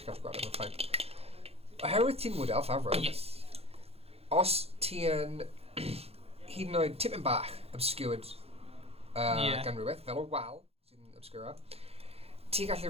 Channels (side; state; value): left; late; 0.29 ms